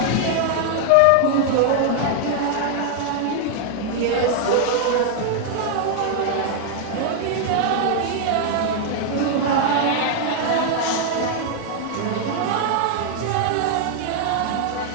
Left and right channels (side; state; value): both; different; correlation 0.00